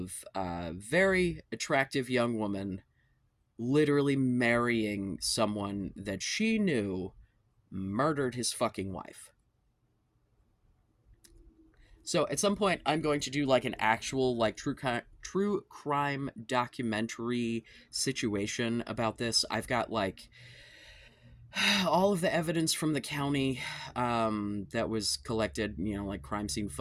a very attractive young woman literally marrying someone that she knew murdered his fucking wife. So at some point, I'm going to do like an actual like true crime documentary situation about this. I've got like all of the evidence from the county that was collected, you know, like crime scene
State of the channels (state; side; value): identical; both; correlation 1.00